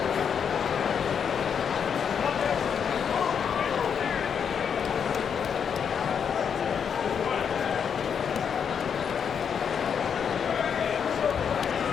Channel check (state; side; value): quieter; right; 7.3 dB